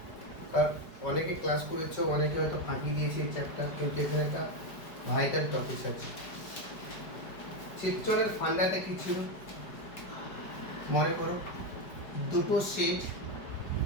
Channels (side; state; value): right; late; 5.0 ms